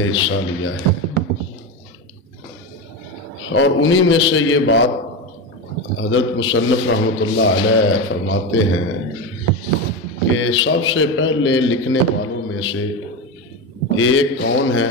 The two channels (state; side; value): normal; both; correlation 0.18